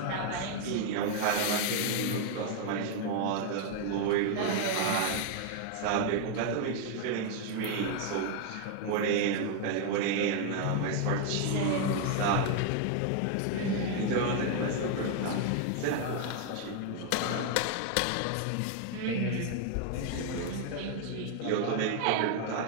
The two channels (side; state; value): both; different; correlation 0.00